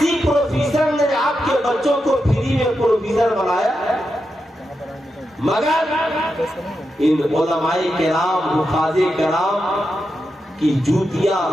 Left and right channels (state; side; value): normal; both; correlation 0.87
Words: پروفیسر نے آپ کے بچوں کو فری میں پروفیسر بنایا؟ مگر ان علماء کرام, حفاظ کرام کی جوتیاں